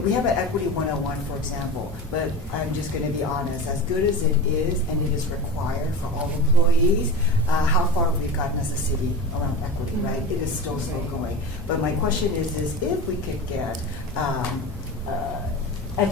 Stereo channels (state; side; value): normal; both; correlation 0.29